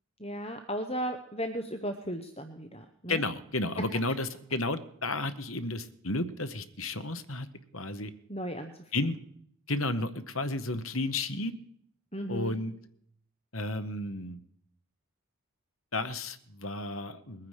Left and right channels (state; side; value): normal; both; correlation 0.29